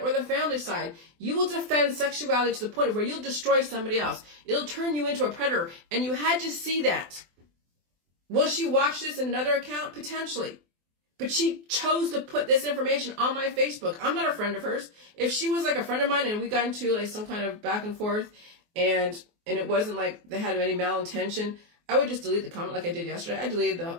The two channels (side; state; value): left; late; 24 ms